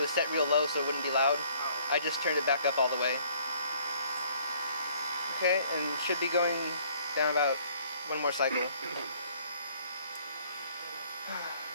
set real low so it wouldn't be loud. I just turned it back up all the way. Okay, and should be going down about one more cycle.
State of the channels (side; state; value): both; inverted; correlation -0.59